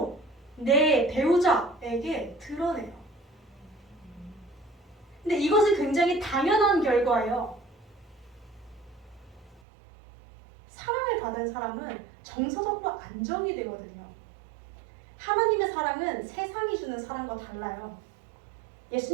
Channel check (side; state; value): left; drops out; at 9.6 s